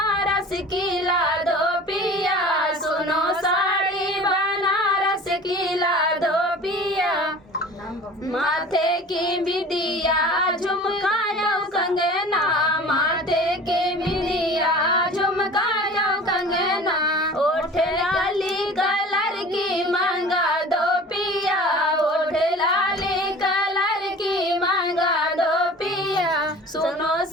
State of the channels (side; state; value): both; normal; correlation 0.42